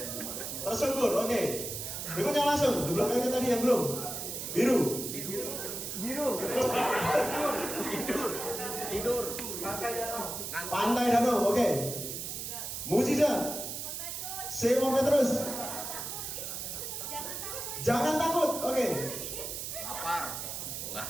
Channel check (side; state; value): right; noise; hiss, 5 dB below the sound